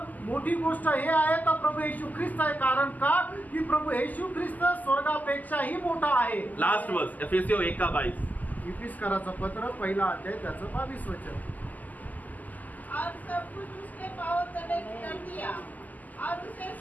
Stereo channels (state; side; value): late; right; 0.081 ms